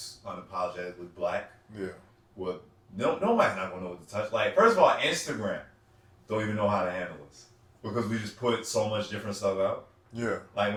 unapologetically black. Yeah. Well, nobody's not gonna know what to touch. Like, first of all, Instagram don't even know how to handle this because we just put so much different stuff out. Yeah. Like,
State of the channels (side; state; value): both; identical; correlation 1.00